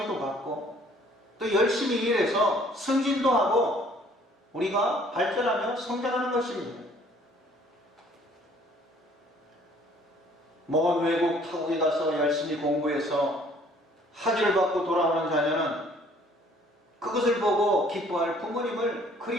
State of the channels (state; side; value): normal; both; correlation 0.58